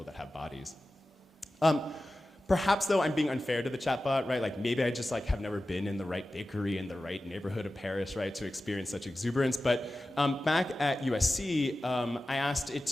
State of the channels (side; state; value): both; normal; correlation 0.95